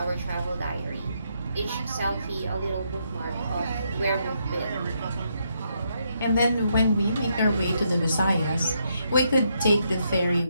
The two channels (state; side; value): inverted; both; correlation -0.77